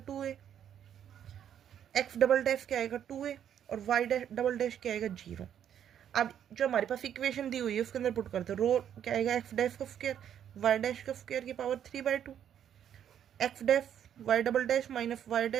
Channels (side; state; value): left; quieter; 9.5 dB